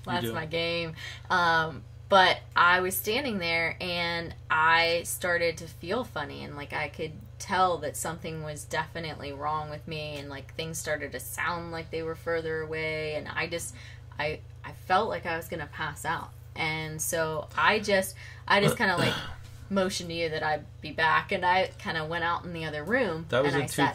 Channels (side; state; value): both; identical; correlation 1.00